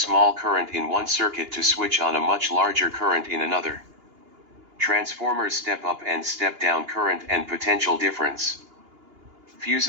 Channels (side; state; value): left; late; 2.9 ms